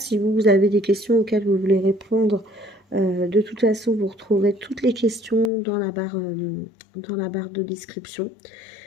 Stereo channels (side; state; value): right; drops out; at 5.5 s